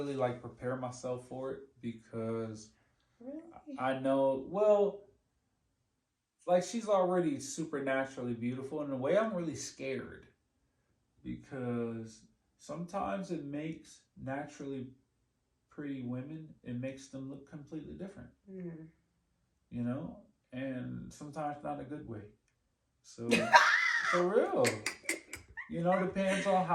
like prepare myself for it because Really? I know, well, like she's already supernaturally beautiful. In a way, I'm really scared because sometimes it makes naturally pretty women, it makes them look completely different, Mm. you know, and sometimes not a good way. So, for real, you know, depends on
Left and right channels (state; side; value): identical; both; correlation 1.00